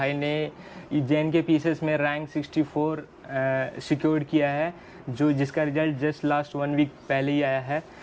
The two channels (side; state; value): both; identical; correlation 1.00